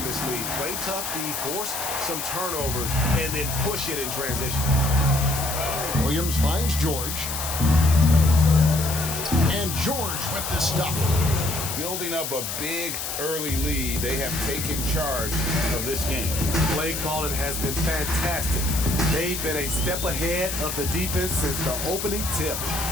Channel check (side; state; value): left; noise; hiss, 4 dB below the sound